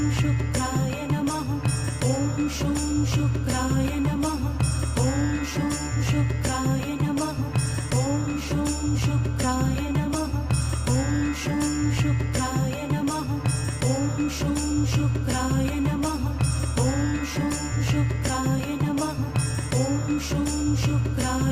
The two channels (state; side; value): identical; both; correlation 1.00